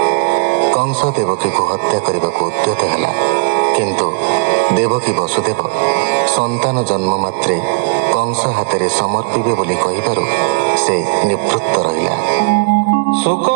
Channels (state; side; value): quieter; left; 32.7 dB